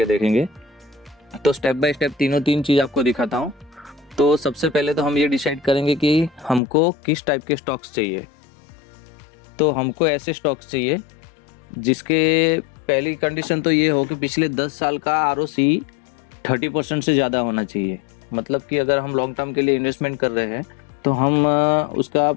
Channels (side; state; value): right; drops out; at 6.6 s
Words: देखेंगे। तो स्टेप बाय स्टेप तीन चीज़ आपको दिखाता हूँ। तो सबसे पहले तो हम ये डिसाइड करेंगे कि हमको किस टाइप के स्टॉक्स चाहिए। तो हमको ऐसे स्टॉक्स चाहिए जिसके पहली कंडीशन तो ये हो कि पिछले 10 साल का ROC 30% से ज़्यादा होना चाहिए। मतलब कि अगर हम लॉन्ग टर्म के लिए इन्वेस्टमेंट कर रहे हैं तो हम उसका